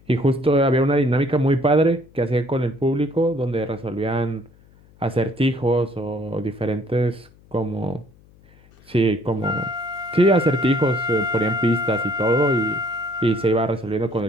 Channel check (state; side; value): noise; left; hum, 28 dB below the sound